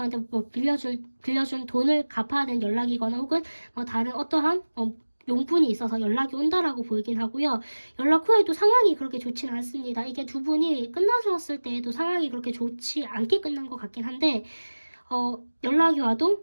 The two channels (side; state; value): both; inverted; correlation -1.00